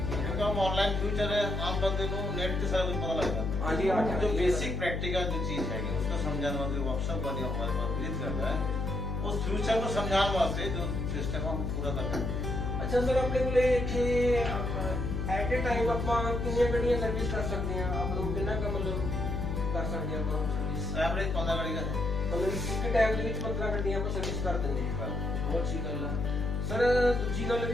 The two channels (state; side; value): noise; left; hum, 1 dB below the sound